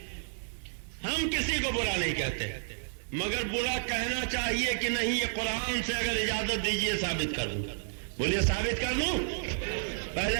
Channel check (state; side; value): silent; left; digital silence